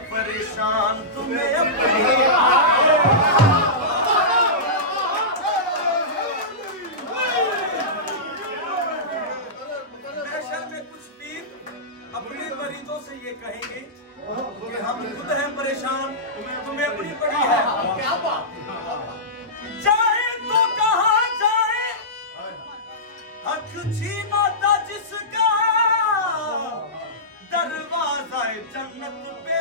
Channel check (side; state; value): both; normal; correlation -0.17